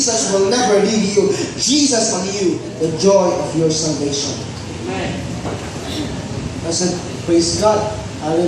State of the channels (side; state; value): both; identical; correlation 1.00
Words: will never leave you. Jesus on you, the joy of your salvation. Amen. I said, praise God.